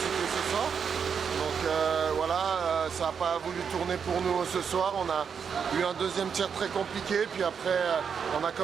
ce soir. Donc voilà, ça n'a pas voulu tourner pour nous ce soir. On a eu un deuxième tiers très compliqué, puis après on a quand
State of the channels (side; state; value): left; quieter; 6.7 dB